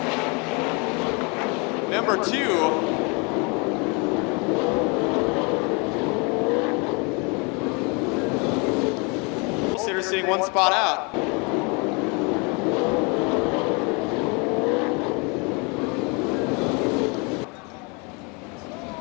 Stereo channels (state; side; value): quieter; right; 31.3 dB